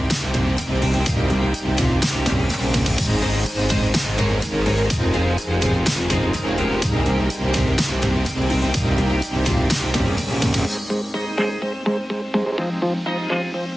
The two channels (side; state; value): both; normal; correlation 0.95